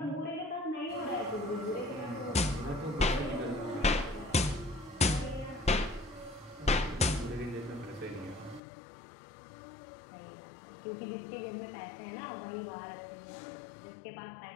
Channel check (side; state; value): right; drops out; at 8.6 s